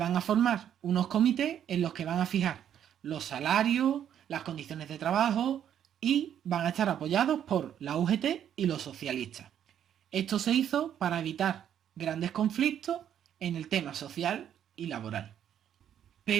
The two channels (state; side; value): quieter; left; 9.7 dB